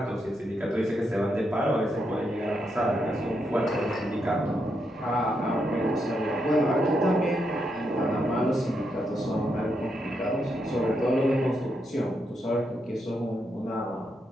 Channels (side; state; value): both; normal; correlation 0.81